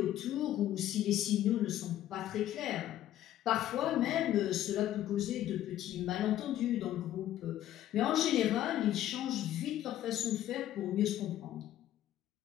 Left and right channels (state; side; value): quieter; right; 12.6 dB